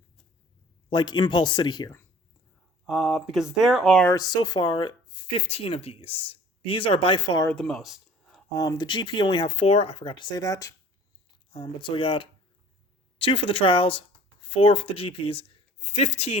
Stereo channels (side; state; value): both; normal; correlation 0.49